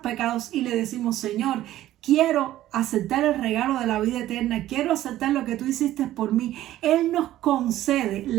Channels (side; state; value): left; quieter; 14.0 dB